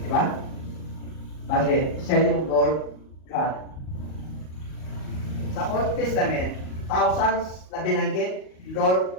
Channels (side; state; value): right; late; 38 ms